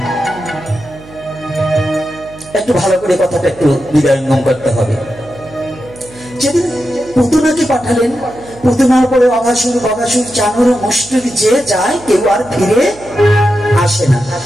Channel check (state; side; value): noise; right; hum, 21 dB below the sound